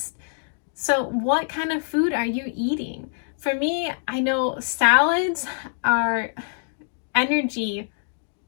So what kind of food are you eating? For me, I know salads are energy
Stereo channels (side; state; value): right; silent; digital silence